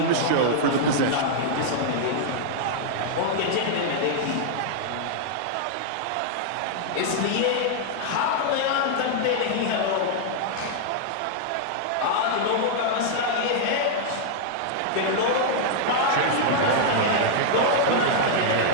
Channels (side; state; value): both; different; correlation -0.01